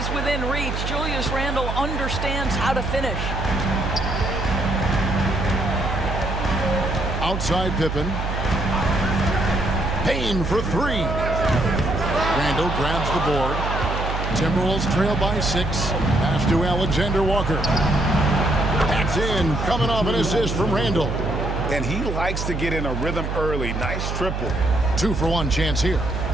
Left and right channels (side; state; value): right; noise; hum, 3 dB below the sound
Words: within reach, Julius Randle understands how to finish. Outside Pippen. Payne for three. Randall grabs the board. Timberwolves trail by 6. Pass to Alexander Walker. That's in. Coming off an assist from Randall. And he likes to get in a rhythm early. Nice triple. 2-for-1 chance here.